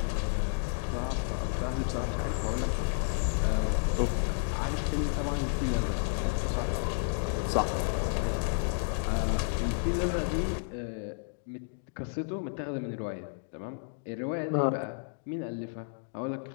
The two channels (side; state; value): right; silent; digital silence